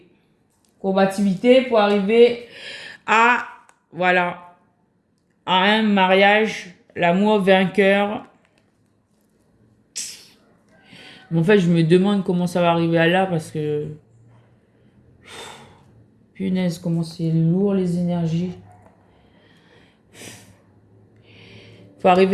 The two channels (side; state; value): both; identical; correlation 1.00